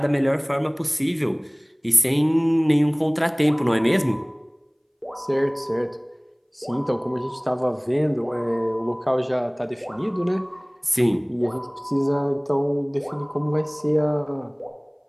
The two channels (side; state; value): both; identical; correlation 1.00